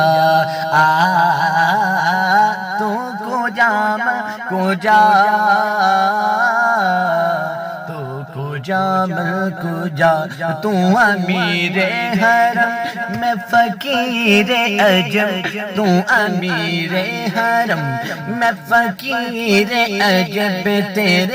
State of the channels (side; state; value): both; identical; correlation 1.00